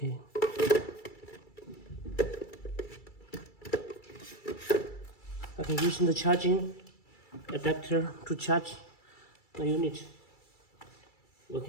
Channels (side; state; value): right; late; 2.3 ms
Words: I can use the charging adapter to charge the unit. We